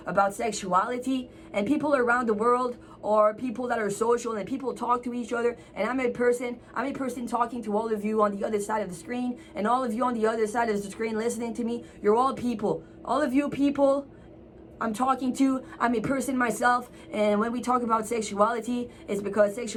about sexuality, and people around the world are people that are social, and people talk to each other, and I'm a person talking to all of you on the other side of the screen, and all of you on the other side of the screen listening to me. You're all people. All of you people I'm talking to, I'm a person myself, and when we talk about sexuality, it's because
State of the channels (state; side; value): identical; both; correlation 1.00